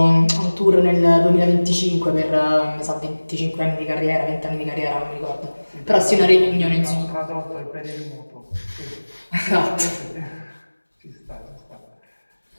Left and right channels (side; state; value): both; inverted; correlation -1.00